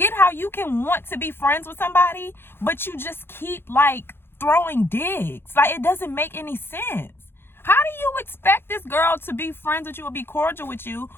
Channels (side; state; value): right; late; 0.11 ms